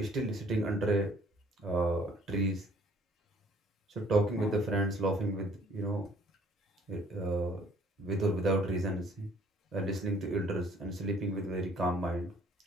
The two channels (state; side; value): normal; both; correlation 0.58